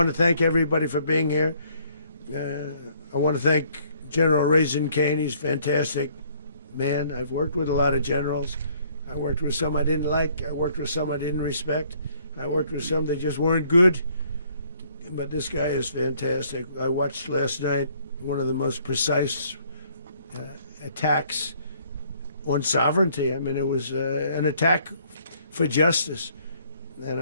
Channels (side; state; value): both; inverted; correlation -0.63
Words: to thank everybody for being here. I want to thank General Raisin Kane. He's a fantastic man. I've worked with a lot of generals. I worked with some I didn't like. I worked with some I didn't respect. I worked with some that just weren't good. But this guy is fantastic. I watched last night one of the most precise attacks on sovereignty. I mean, it was an attack for justice. And